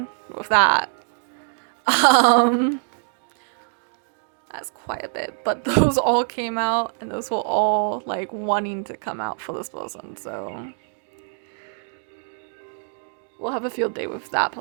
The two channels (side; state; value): left; silent; digital silence